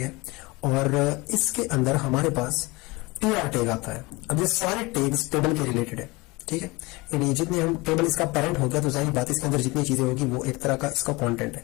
है, और इसके अंदर हमारे पास tr टैग आता है। अब ये सारे टैग्स टेबल के रिलेटेड है, ठीक है, यानी जितने हम टेबल इसका पेरेंट हो गया तो जाहिर बात इसके अंदर जितनी चीजें होगी वो एक तरह का इसका कंटेंट है।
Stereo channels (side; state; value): right; quieter; 23.8 dB